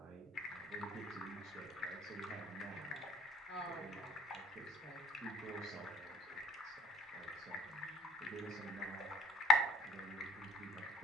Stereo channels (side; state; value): both; normal; correlation 0.52